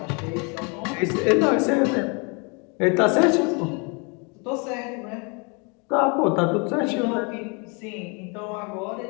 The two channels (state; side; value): quieter; right; 32.9 dB